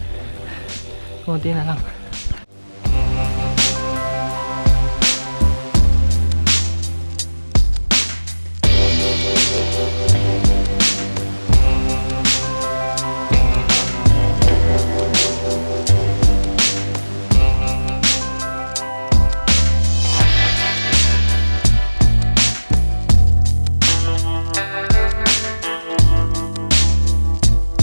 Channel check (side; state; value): both; inverted; correlation -1.00